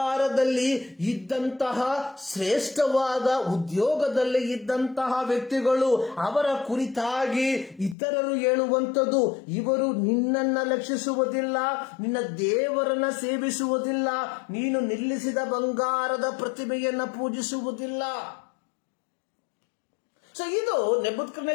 ಇದ್ದಂತಹ ಶ್ರೇಷ್ಠವಾದ ಉದ್ಯೋಗದಲ್ಲಿ ಇದ್ದಂತಹ ವ್ಯಕ್ತಿಗಳು. ಅವರ ಕುರಿತಾಗಿ ಇತರರು ಹೇಳುವಂಥದ್ದು, ಇವರು ನಿನ್ನನ್ನ ಲಕ್ಷಿಸುವುದಿಲ್ಲ, ನಿನ್ನ ದೇವರನ್ನ ಸೇವಿಸುವುದಿಲ್ಲ, ನೀನು ನಿಲ್ಲಿಸಿದ ಬಂಗಾರದ ಪ್ರತಿಮೆಯನ್ನ ಪೂಜಿಸುವುದಿಲ್ಲ. ಸೊ ಇದು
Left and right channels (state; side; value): drops out; right; at 8.0 s